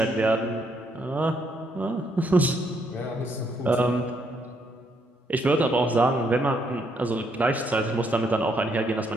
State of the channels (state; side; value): normal; both; correlation 0.73